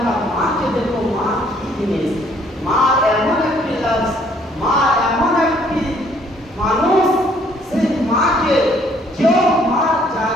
মাকে দেখো, মা কি জিনিস। মা এমন একটি লাভ, মা এমন একটি মানুষ, সেই মাকে কেউ মা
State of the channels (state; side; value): normal; both; correlation 0.63